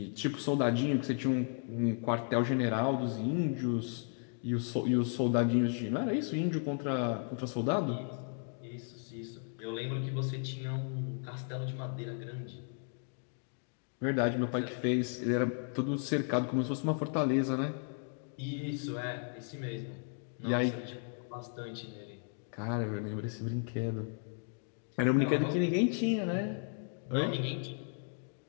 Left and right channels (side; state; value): right; silent; 55 dB below the other